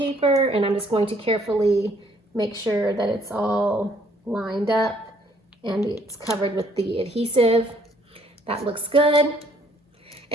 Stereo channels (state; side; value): normal; both; correlation 0.64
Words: and I'm just going to carefully make sure that it's all lined up and it's covered with the adhesive. That looks good.